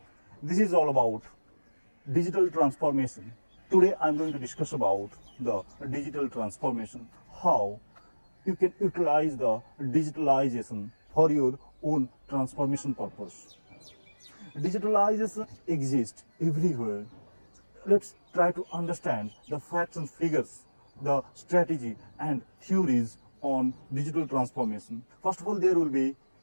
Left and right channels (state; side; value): inverted; both; correlation -1.00